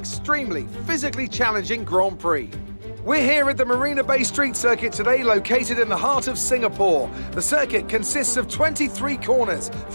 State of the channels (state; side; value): inverted; both; correlation -1.00